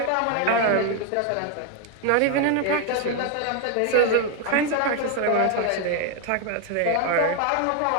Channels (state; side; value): different; both; correlation 0.01